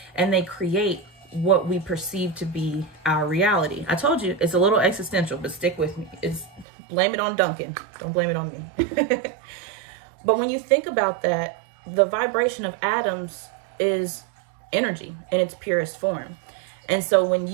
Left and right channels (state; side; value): drops out; left; at 6.7 s